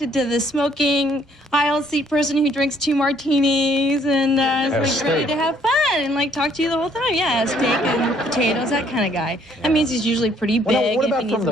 to the smoking aisle seat person who drinks 2 martinis and is ready to have fun and talk to you the whole time. Yeah, steak and potatoes, that kind of guy. That means he's usually pretty big. What about from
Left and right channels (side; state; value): both; normal; correlation 0.64